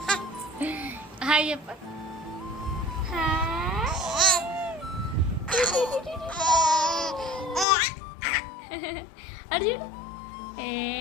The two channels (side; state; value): right; drops out; at 7.7 s